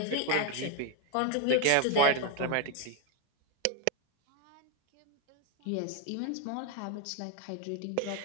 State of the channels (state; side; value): different; both; correlation 0.01